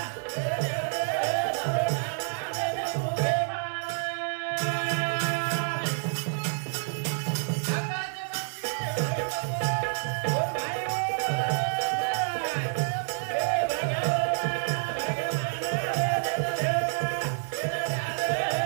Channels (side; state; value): left; silent; digital silence